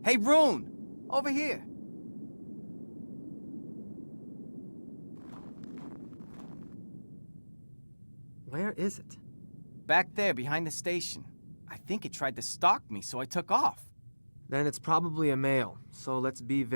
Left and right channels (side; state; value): both; inverted; correlation -1.00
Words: Hey, Rune! Over here. Where is it? Back there, behind the station. I think it tried to stalk me, so I took off. Then it's probably a male, so let's be